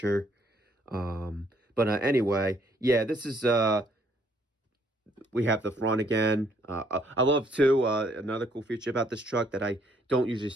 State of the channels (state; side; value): normal; both; correlation 0.67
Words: But anyway, yeah, this is we have the front again. I love too another cool feature about this truck that I don't usually